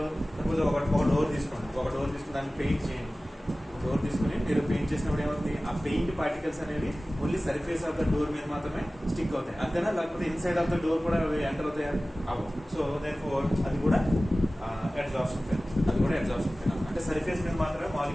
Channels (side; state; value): both; normal; correlation 0.97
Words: ఒక డోర్ తీసుకుని దాన్ని పెయింట్ చేయండి. డోర్ తీసుకుని మీరు పెయింట్ చేసినప్పుడు ఏమవుతుంది, ఆ పెయింట్ పార్టికల్స్ అనేవి only surface of the door మీద మాత్రమే స్టిక్ అవుతాయి, అంతేనా? లేకపోతే ఇన్సైడ్ ఆఫ్ ద డోర్ కూడా అవి ఎంటర్ అవుతాయి అవ్వవు. సో దేర్ఫోర్ అది కూడా అడ్సార్ప్షన్ ఫినామినన్. అంటే సర్ఫేస్ మీద మాత్రమే